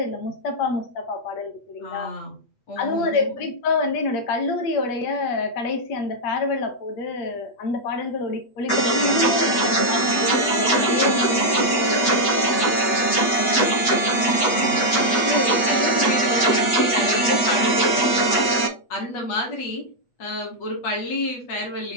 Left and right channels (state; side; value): late; right; 8.1 ms